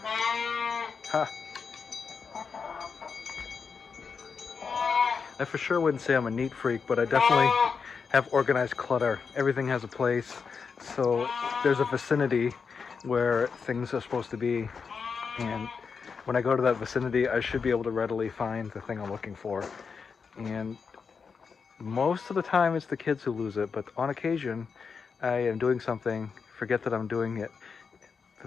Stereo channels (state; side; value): quieter; right; 5.6 dB